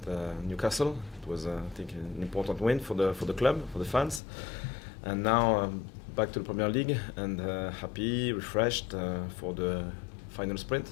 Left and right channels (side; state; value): right; drops out; at 4.2 s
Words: Newcastle. It was, I think, an important win for the club, for the fans, and now back to the Premier League and happy, refreshed for the final